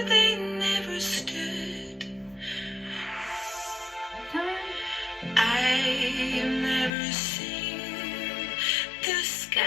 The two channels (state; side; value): drops out; right; at 6.9 s